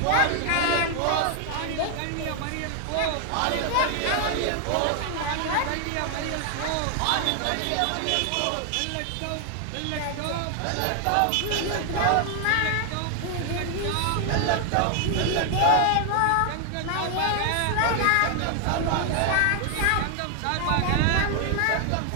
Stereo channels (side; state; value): both; different; correlation 0.00